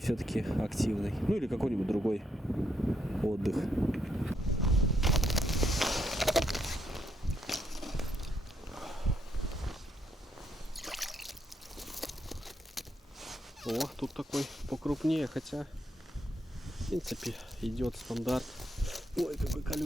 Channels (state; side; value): normal; both; correlation 0.77